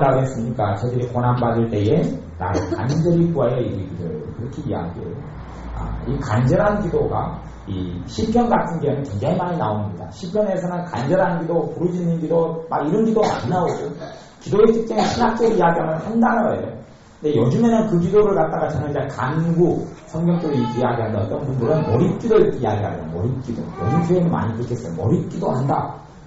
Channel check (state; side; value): identical; both; correlation 1.00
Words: 했습니까? 저들이 고난받을 때에 나를 간절히 구하여 이르기를 그렇게 이야기해요. 이 간절한 기도가 이 시편 같은 경우는 굉장히 많이 나옵니다. 시편에서는 간절한 기도, 부르짖는 기도 막 이런 기도 많이 나오고 기도의 특징은 신학적으로 이야기하면 한 단어예요. 근데 요즘에는 그 기도를 갖다가 저는 이제 간구, 성경적으로 이야기하는 어떤 분들은 몰입기도 이렇게 이야기하는 몰입기도. 요즘 교회는 많이 그렇겠어요. 몰입기도 한다.